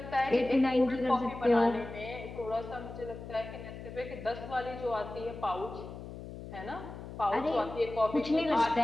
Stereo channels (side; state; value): left; noise; hum, 11 dB below the sound